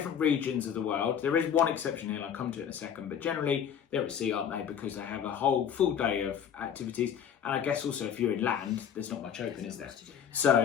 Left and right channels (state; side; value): quieter; right; 8.4 dB